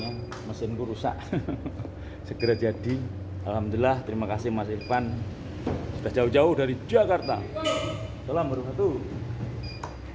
Mesinku rusak segera jadi. Alhamdulillah, terima kasih Mas Irfan. Sudah jauh-jauh dari Jakarta. Salam warahmatullahi.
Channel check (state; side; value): identical; both; correlation 1.00